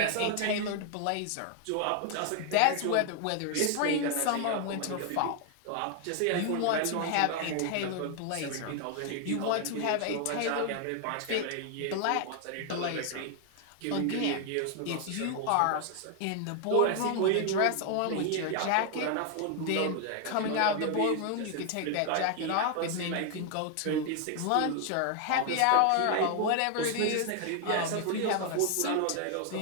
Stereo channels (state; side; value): different; both; correlation 0.00